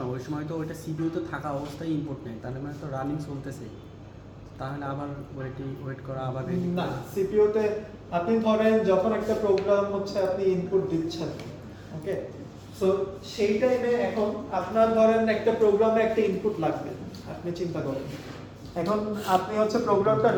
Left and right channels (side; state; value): both; identical; correlation 1.00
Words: ওই সময় তো ওইটা সিপিইউ তো থাকা অবস্থায় ইনপুট নেয়, তাহলে মানে তো রানিং চলতেছে, তাহলে আবার ওয়েট করা আবার ready না, করা। সিপিইউতে আপনি ধরেন যখন একটা প্রোগ্রাম হচ্ছে আপনি ইনপুট দিচ্ছেন, ওকে, সো সেই টাইমে এখন আপনার ধরেন একটা প্রোগ্রামে একটা ইনপুট লাগবে, আপনি চিন্তা করেন এখন আপনি হচ্ছে প্রোগ্রামটা